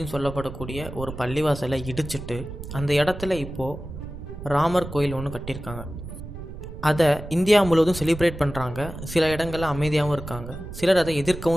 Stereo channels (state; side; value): noise; right; rumble, 11 dB below the sound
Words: சொல்லப்படக்கூடிய ஒரு பள்ளிவாசலை இடிச்சிட்டு அந்த இடத்துல இப்போது ராமர் கோயில் ஒன்று கட்டியிருக்காங்க. அதை இந்தியா முழுவதும் செலிப்ரேட் பண்ணுறாங்க. சில இடங்களில் அமைதியாகவும் இருக்காங்க, சிலர் அதை